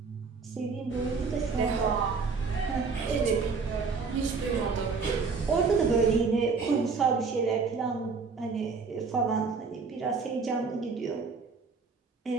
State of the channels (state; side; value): quieter; left; 4.8 dB